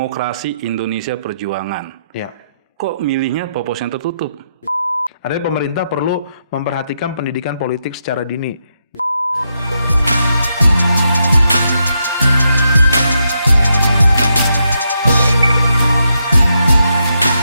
Indonesia Perjuangan. Ya. Kok milihnya proporsional tertutup? Artinya pemerintah perlu memperhatikan pendidikan politik secara dini.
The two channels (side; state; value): both; inverted; correlation -0.81